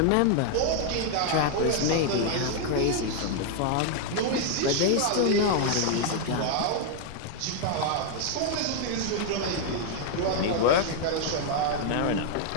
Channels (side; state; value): both; different; correlation 0.00